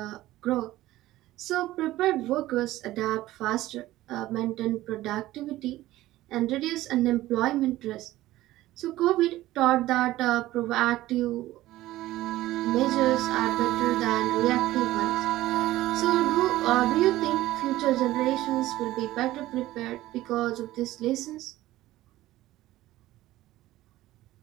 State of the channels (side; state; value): left; quieter; 16.0 dB